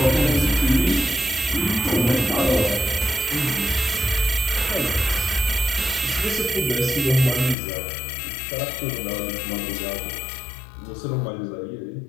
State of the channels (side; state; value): right; drops out; at 7.6 s